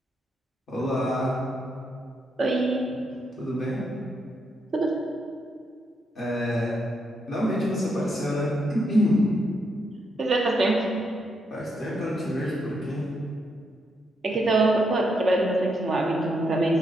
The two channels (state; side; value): normal; both; correlation 0.79